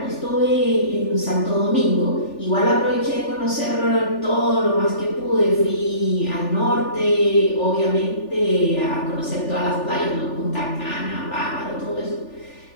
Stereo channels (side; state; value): right; late; 3.4 ms